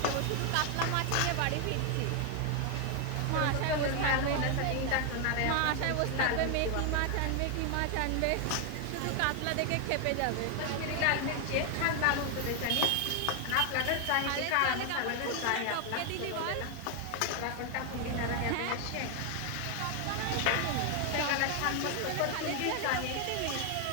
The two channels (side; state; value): both; different; correlation 0.01